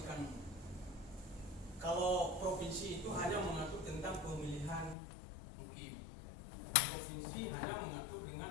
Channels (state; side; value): drops out; right; at 5.0 s